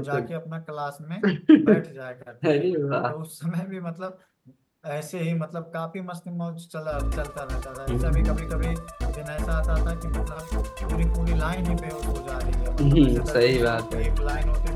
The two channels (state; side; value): identical; both; correlation 1.00